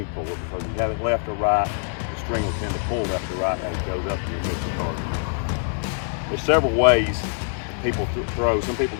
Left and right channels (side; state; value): right; silent; 62 dB below the other